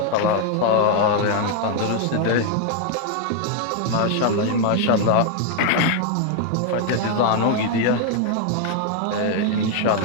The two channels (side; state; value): both; different; correlation 0.00